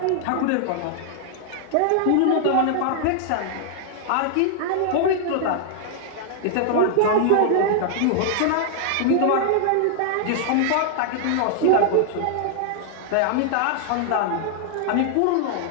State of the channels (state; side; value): different; both; correlation 0.00